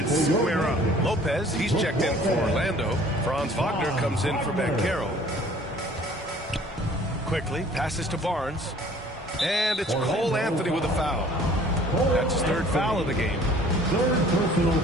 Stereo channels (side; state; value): both; normal; correlation 0.53